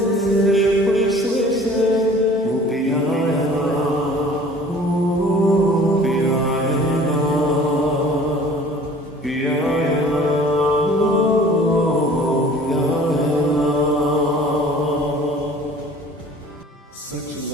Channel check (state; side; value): normal; both; correlation 0.49